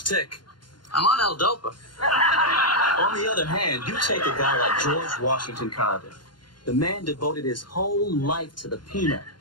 tick. I'm on L-Dopa. On the other hand, you take a guy like George Washington Carver. The man devoted his whole life to the peanut.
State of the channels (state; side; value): late; right; 0.71 ms